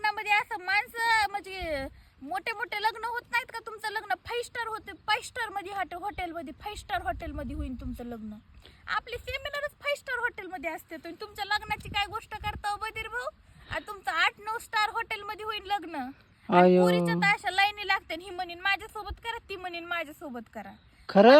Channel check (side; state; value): both; identical; correlation 1.00